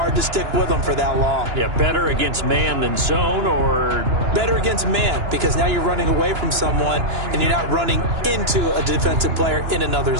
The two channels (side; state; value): left; late; 2.9 ms